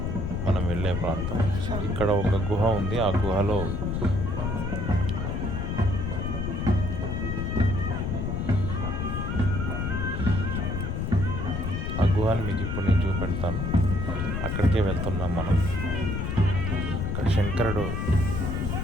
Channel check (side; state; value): left; noise; rumble, 1 dB below the sound